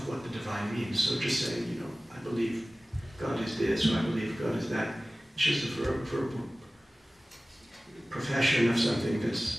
what the divine means. So just saying, I believe God is this, or I believe God is that, it's just a verbal profession of something that's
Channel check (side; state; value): both; normal; correlation 0.97